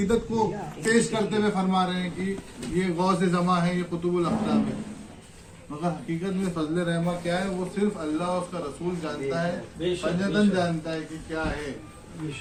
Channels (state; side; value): identical; both; correlation 1.00